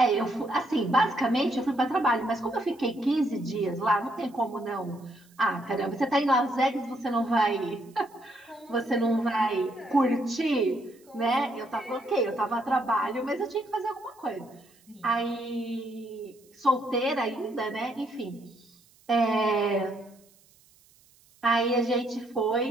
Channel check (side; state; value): right; noise; hiss, 30 dB below the sound